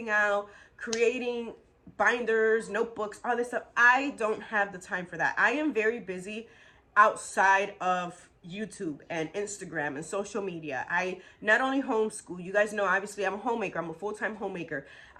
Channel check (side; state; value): both; identical; correlation 1.00